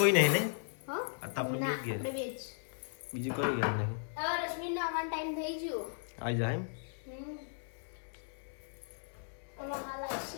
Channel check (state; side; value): silent; right; 53 dB below the other